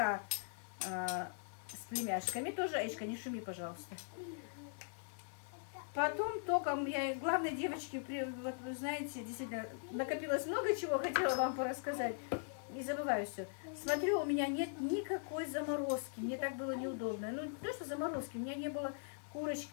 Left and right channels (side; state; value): right; silent; 51 dB below the other